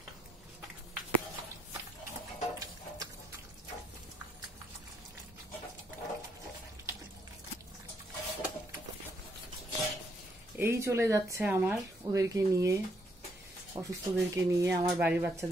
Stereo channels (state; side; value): normal; both; correlation 0.73